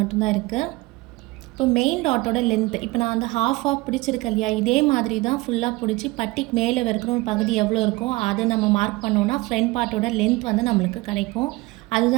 இருக்குது. இப்போ மெயின் டாட்டோட லென்த்து இப்போ நான் வந்து ஹாஃப் பிடிச்சிருக்கேன் இல்லையா, இதே மாதிரி தான் ஃபுல்லாக பிடிச்சி பட்டிக்கு மேலே இருக்கிற ஒரு பகுதி எவ்வளோ இருக்கோ அதை நம்ம மார்க் பண்ணோன்னா ஃப்ரண்ட் பார்ட்டோட லென்த் வந்து நம்மளுக்கு கிடைக்கும்.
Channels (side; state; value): left; quieter; 22.1 dB